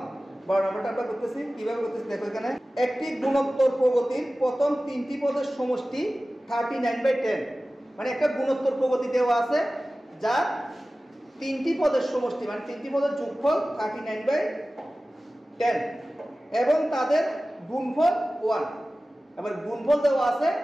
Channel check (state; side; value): normal; both; correlation 0.96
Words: 12 নাম্বারটা আমরা করতেছি কিভাবে করতেছি দেখো এখানে একটি গুণোত্তর প্রগতির প্রথম তিনটি পদের সমষ্টি 39/10 মানে একটা গুণোত্তর প্রগতি দেওয়া আছে যা তিনটি পদের সমষ্টি মানে তিনটি পদের যোগফল 39/10 এবং তাদের গুণফল 1 এবার গুণফল দেওয়া আছে